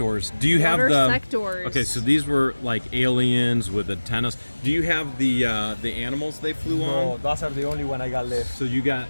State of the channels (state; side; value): inverted; both; correlation -1.00